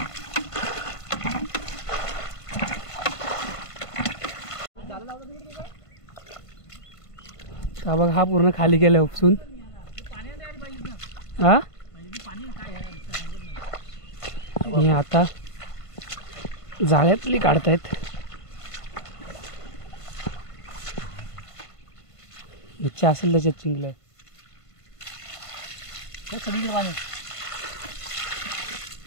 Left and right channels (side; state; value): right; late; 1.5 ms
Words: हा बघ हा पूर्ण खाली गेला उपसून. हा आणि आता जाळ्यातली काढतायत. मच्छी असेल त्याच्यात चिंगलं. सगळीकडे पाणी